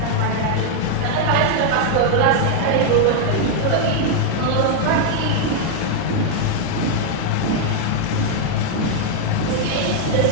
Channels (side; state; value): both; different; correlation 0.00